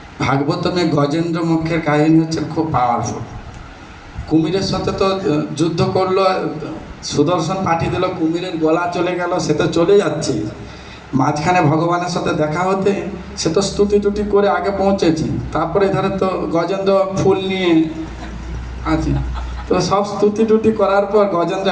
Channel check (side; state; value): both; identical; correlation 1.00